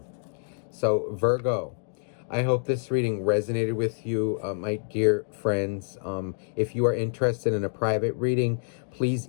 So, Virgo, I hope this reading resonated with you, my dear friends. If you are interested in a private reading, please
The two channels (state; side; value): silent; right; digital silence